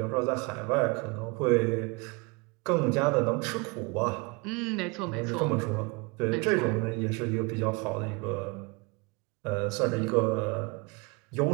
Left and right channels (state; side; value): quieter; left; 28.8 dB